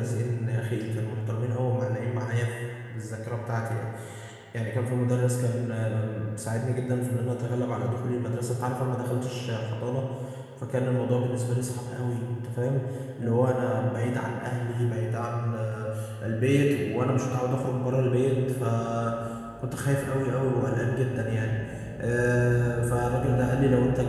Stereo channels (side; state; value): both; identical; correlation 1.00